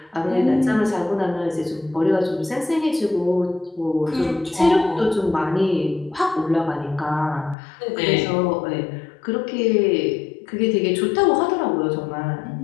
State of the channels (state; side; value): drops out; right; at 7.6 s